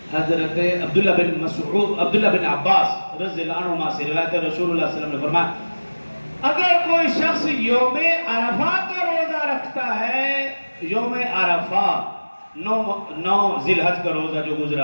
عبداللہ بن عباس رضی اللہ عنہما سے روایت ہے، رسول اللہ صلی اللہ علیہ وسلم نے فرمایا اگر کوئی شخص یوم عرفہ کا روزہ رکھتا ہے، یوم عرفہ 9 ذی الحج کا روزہ جو گزرا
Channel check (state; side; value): inverted; both; correlation -1.00